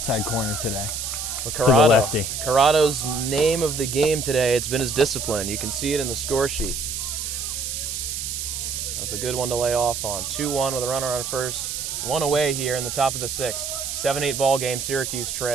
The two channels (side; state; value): right; noise; hiss, 4 dB below the sound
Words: corner today. But to the lefty. Corrado's name of the game today, it's been his discipline. You can see it in the score sheet. That's a good one to lay off on. 2-1 with a runner on first. 1 away here in the top of the 6th. 7-8 ball game. Syracuse